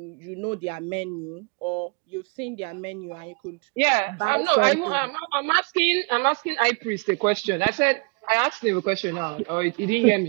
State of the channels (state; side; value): quieter; left; 33.4 dB